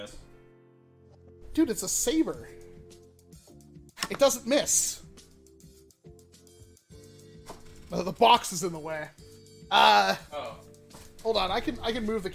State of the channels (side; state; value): both; identical; correlation 1.00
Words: Dude, it's a saber. It doesn't miss. Oh, the box is in the way. Oh. Hold on. I can move the